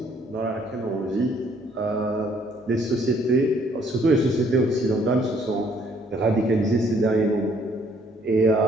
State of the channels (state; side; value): normal; both; correlation 0.64